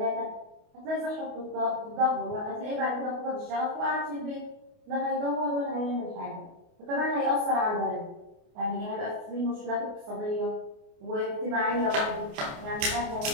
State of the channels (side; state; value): left; late; 28 ms